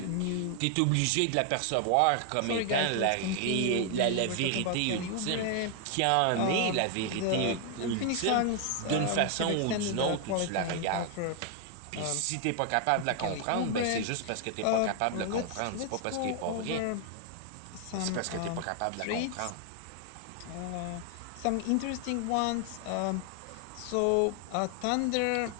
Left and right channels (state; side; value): different; both; correlation 0.00